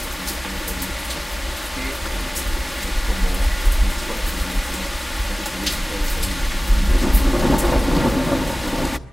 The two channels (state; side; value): normal; both; correlation 0.97